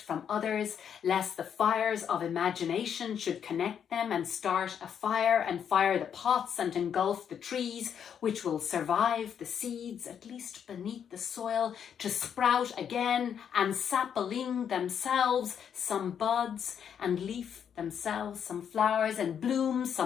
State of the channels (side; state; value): right; quieter; 8.2 dB